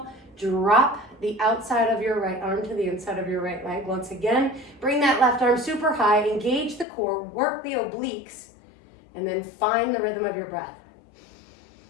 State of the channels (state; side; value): drops out; right; at 6.9 s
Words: Drop the outside of your right arm to the inside of your right leg. Once again, bring that left arm super high. Engage the core. Work the obliques. And then find the rhythm of your breath.